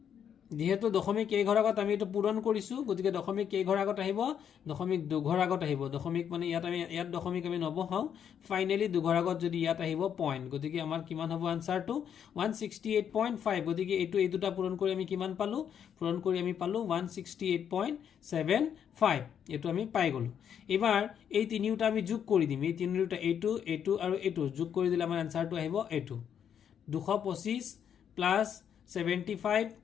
যেহেতু দশমিক কেই ঘৰ আগত আমি এটো পূৰণ কৰিছো গতিকে দশমিক কেই ঘৰ আগত আহিব দশমিক 2 ঘৰ আগত আহিব দশমিক মানে ইয়াত দশমিক আমি নবহাও ফাইনালি 2 ঘৰ আগত যদি ইয়াত আহিব পইণ্ট গতিকে আমাৰ কিমান হ'ব আনসাৰটো 168.5 গতিকে এই দুটা পূৰণ কৰি আমি কিমান পালো পূৰণ কৰি আমি পালো 168.75 এটো আমি পাই গলো এবাৰ এই তিনিটা আমি যোগ কৰি দিম এই তিনিটা এইটো আৰু এইটো যোগ কৰি দিলে আমাৰ আনসাৰটো আহিব এইটো 225 প্লাস 75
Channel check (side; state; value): right; quieter; 8.5 dB